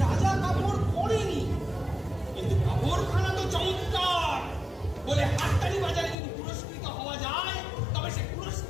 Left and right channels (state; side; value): drops out; right; at 6.2 s